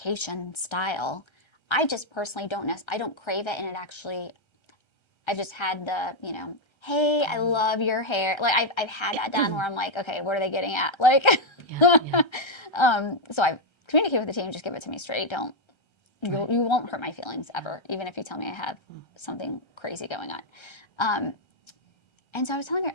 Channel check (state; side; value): late; right; 1.3 ms